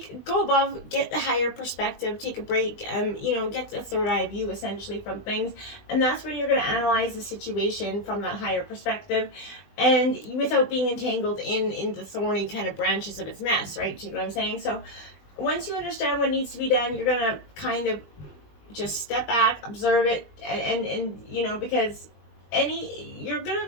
Go above, get the higher perspective, take a break, you know, get the third eye view essentially from things. And that's when you're going to analyze the situation from that higher perspective and without being entangled in the thorny kind of branches of its mess, right? Do you know what I'm saying? So once you understand what needs to be done, you're going to kind of just step back, observe it, and you know, because you're gonna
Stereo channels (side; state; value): right; late; 20 ms